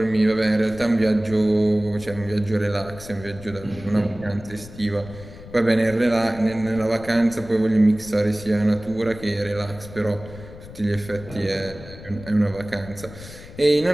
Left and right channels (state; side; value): noise; left; rumble, 16 dB below the sound